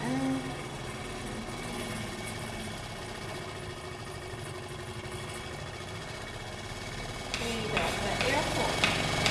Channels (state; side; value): identical; both; correlation 1.00